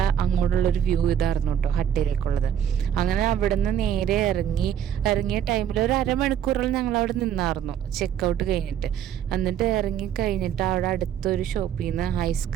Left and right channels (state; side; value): quieter; left; 9.4 dB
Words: അങ്ങോട്ടുള്ളൊരു വ്യൂ ഇതായിരുന്നു കേട്ടോ ഹട്ടിലേക്കുള്ളത്. അങ്ങനെ അവിടെ നിന്ന് നേരെ ഇറങ്ങിയ ടൈമിൽ ഒരു അരമണിക്കൂറോളം ഞങ്ങൾ അവിടെ നിന്നായിരുന്നു ചെക്കൗട്ട് കഴിഞ്ഞിട്ട്. എന്നിട്ട് ഇറങ്ങി കഴിഞ്ഞിട്ട് അവിടെ അടുത്തൊരു ഷോപ്പിൽ നിന്ന്